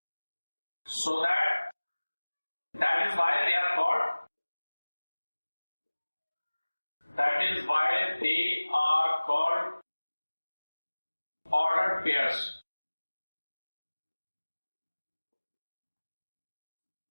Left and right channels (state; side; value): inverted; both; correlation -1.00